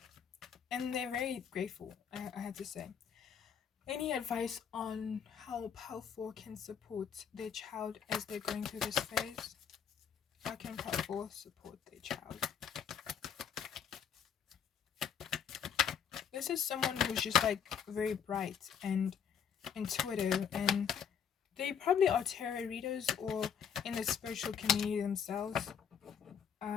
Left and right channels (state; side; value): quieter; right; 7.7 dB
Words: and they're very grateful, I had to say. Any advice on how Pal4 can support their child as they're going through this phase? How can Pal4 support their child? This is someone who's just like very bright and intuitive, and they probably are tarot readers or in the spiritual community themselves.